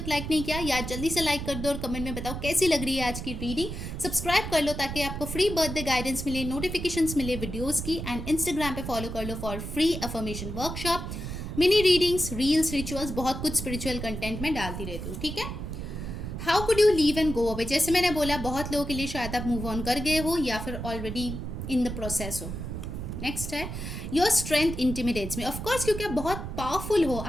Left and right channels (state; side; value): noise; right; rumble, 6 dB below the sound